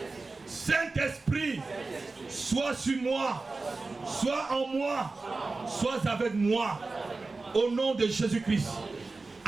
Saint-Esprit, sois sur moi, sois en moi, sois avec moi. Au nom de Jésus-Christ.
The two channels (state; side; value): quieter; left; 3.6 dB